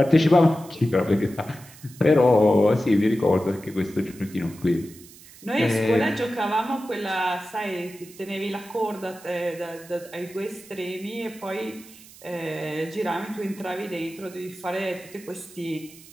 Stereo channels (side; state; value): right; noise; hiss, 21 dB below the sound